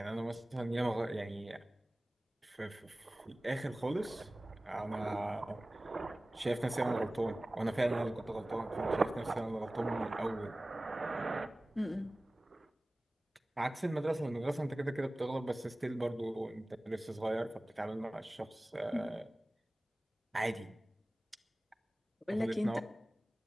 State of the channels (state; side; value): normal; both; correlation 0.98